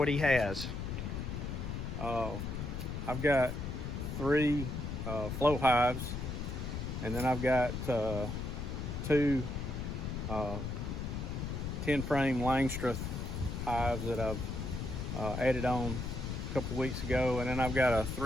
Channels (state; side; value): noise; left; rumble, 4 dB below the sound